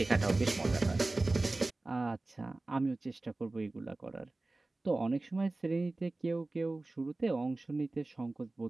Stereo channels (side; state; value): left; quieter; 3.0 dB